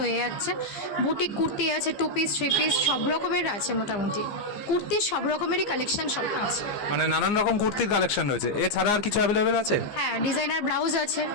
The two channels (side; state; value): right; late; 14 ms